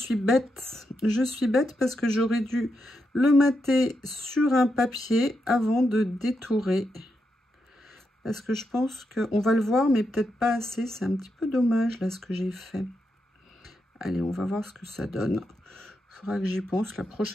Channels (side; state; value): both; normal; correlation 0.84